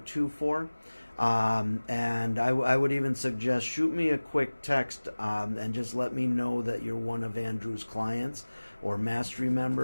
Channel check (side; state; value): both; inverted; correlation -1.00